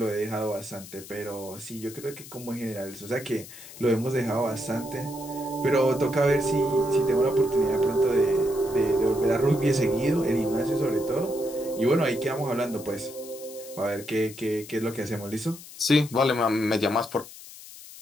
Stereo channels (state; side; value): noise; left; hiss, 16 dB below the sound